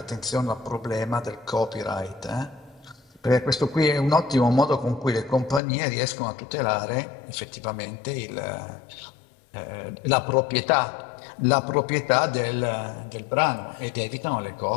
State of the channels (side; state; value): right; drops out; at 5.6 s